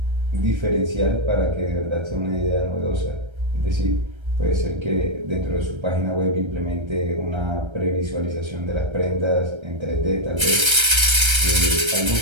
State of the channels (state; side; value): late; left; 1.3 ms